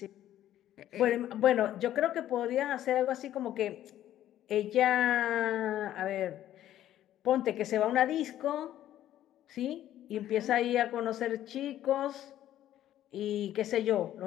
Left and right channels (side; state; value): right; quieter; 12.4 dB